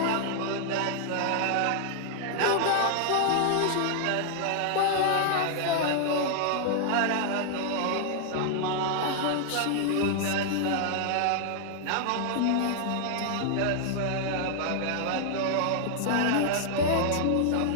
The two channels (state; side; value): different; both; correlation 0.00